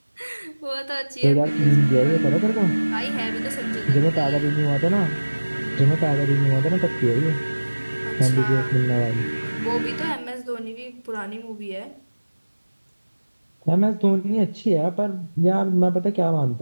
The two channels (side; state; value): both; inverted; correlation -1.00